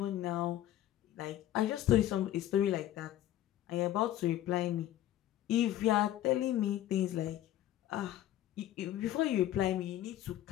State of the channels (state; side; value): quieter; right; 13.0 dB